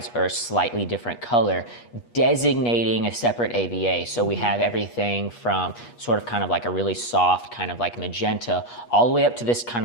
are a slightly different color, designating a separate AVA. So we have everything from sort of kind of like a really soft, kind of like magenta, all the way up to this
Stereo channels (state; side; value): late; right; 8.3 ms